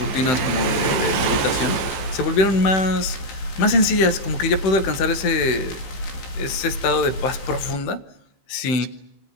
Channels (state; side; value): late; right; 16 ms